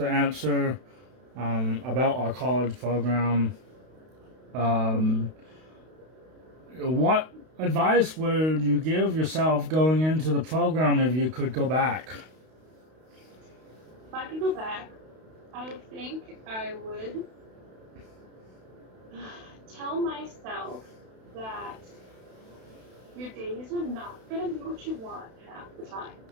answer about our college program. What advice would you give yourself going into the program if you could go back? If I could go back, I think I would tell myself that your days are not going to be what you want half the time,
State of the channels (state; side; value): late; left; 32 ms